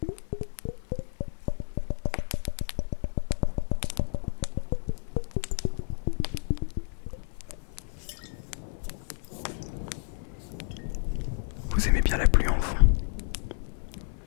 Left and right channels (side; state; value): right; silent; 55 dB below the other